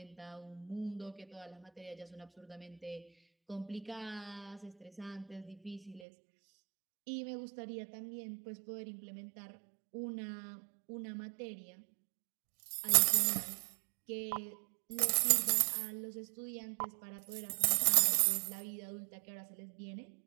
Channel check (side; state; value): left; drops out; at 6.0 s